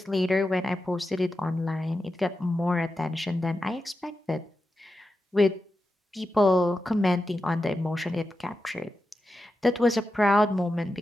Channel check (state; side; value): normal; both; correlation 0.90